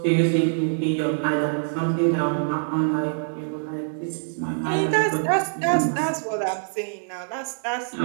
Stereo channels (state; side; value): silent; left; digital silence